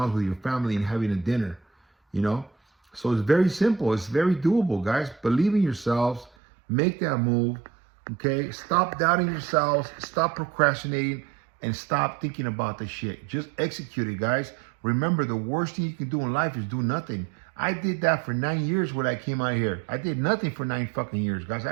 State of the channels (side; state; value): left; drops out; at 6.3 s